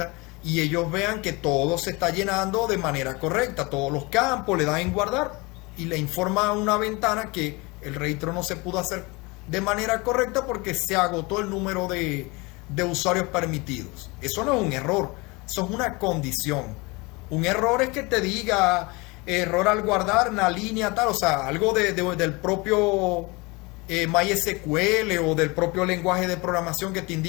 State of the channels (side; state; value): right; quieter; 25.6 dB